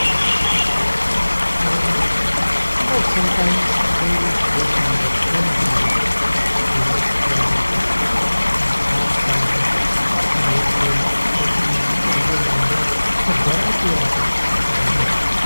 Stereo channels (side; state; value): both; inverted; correlation -1.00